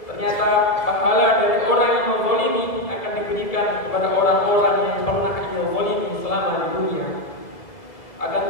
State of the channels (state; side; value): late; right; 1.7 ms